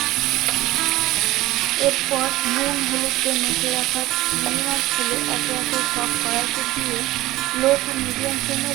এরপর নুন হলুদ দিয়ে মেখে রাখা চিংড়ি মাছগুলো একে একে সব কড়াইতে দিয়ে লো টু মিডিয়াম ফ্লেমে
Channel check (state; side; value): quieter; left; 17.1 dB